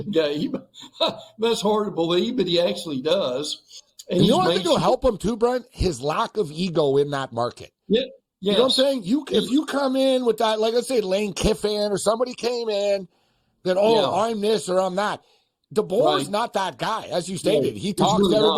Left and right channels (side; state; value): both; identical; correlation 1.00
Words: Gabe. That's hard to believe, but he actually does. And you know what I think will help him too, Brent? His lack of ego in that market. Yeah. You know what I'm saying? If you come in with that, like let's say Lane Kiffin or somebody came in that, I'm this or I'm that. DeBoer's not that guy, as you stated. He talks really to